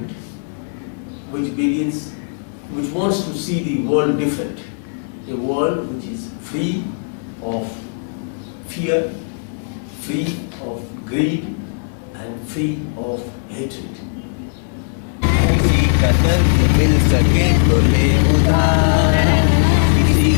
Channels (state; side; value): silent; right; digital silence